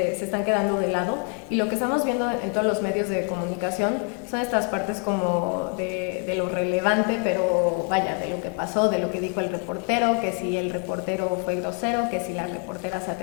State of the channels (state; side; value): quieter; right; 36.6 dB